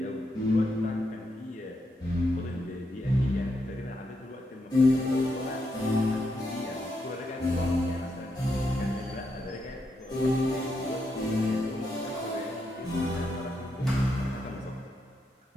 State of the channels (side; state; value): both; normal; correlation 0.81